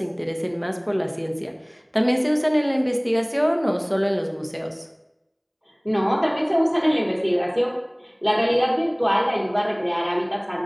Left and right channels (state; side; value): identical; both; correlation 1.00